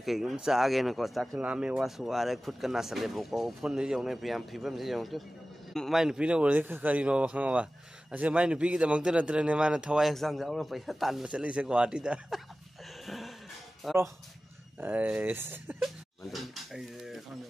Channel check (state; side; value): normal; both; correlation 0.96